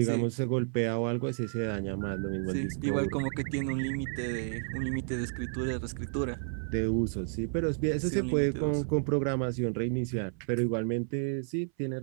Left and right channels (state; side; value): silent; left; 57 dB below the other